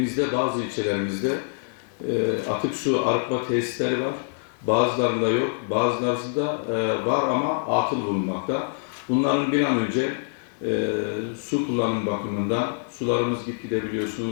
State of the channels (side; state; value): right; silent; 62 dB below the other